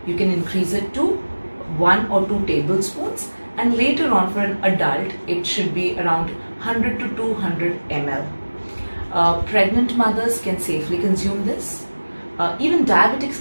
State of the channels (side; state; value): both; inverted; correlation -1.00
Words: you can increase it to 1 or 2 tablespoons, and later on for an adult it should be around 100 to 200 ml. Pregnant mothers can safely consume this. Even diabetics